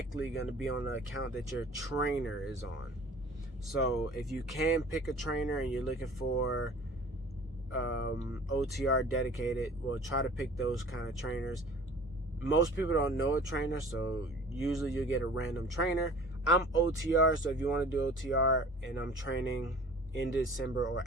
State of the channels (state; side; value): normal; both; correlation 0.46